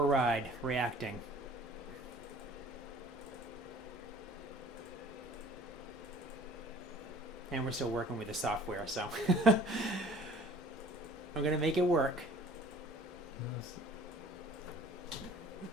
a ride, reacting. And we're still working with the software, so I'm going to make it work.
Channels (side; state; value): both; normal; correlation 0.50